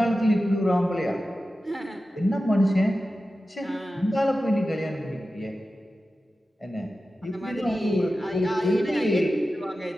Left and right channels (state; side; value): normal; both; correlation 0.94